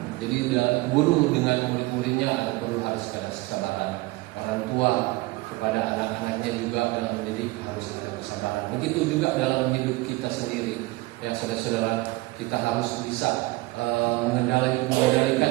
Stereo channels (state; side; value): quieter; left; 21.3 dB